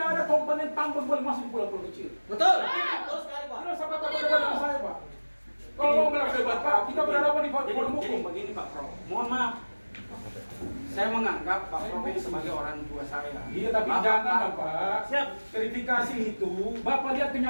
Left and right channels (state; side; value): inverted; both; correlation -1.00